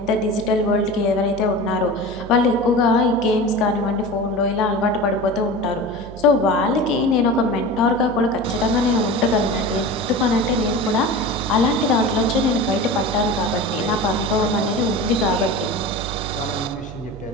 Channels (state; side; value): noise; right; hum, 15 dB below the sound